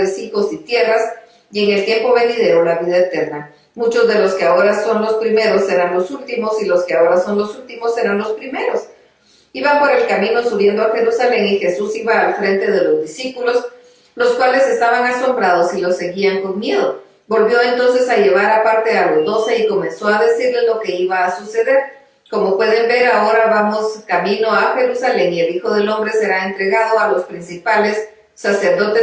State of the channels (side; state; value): both; identical; correlation 1.00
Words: hijos y tierras, y en el tiempo venidero la vida eterna. Muchos de los que ahora son los primeros serán los últimos, y los que ahora son los últimos serán los primeros. Iban por el camino subiendo a Jerusalén, y Jesús iba al frente de los discípulos, los cuales estaban asombrados y lo seguían con miedo. Volvió entonces a llevar aparte a los 12 y comenzó a decirles lo que iba a suceder. Como pueden ver, ahora vamos camino a Jerusalén y el Hijo del Hombre será entregado a los principales